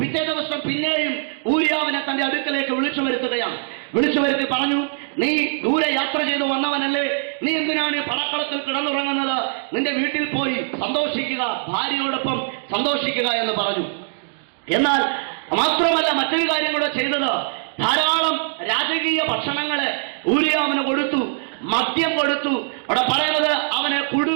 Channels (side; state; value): left; silent; digital silence